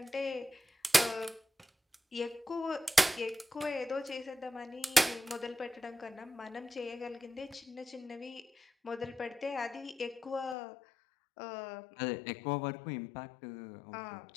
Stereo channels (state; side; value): drops out; right; at 10.6 s